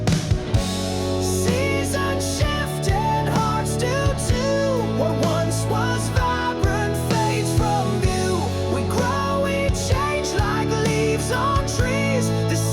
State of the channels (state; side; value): identical; both; correlation 1.00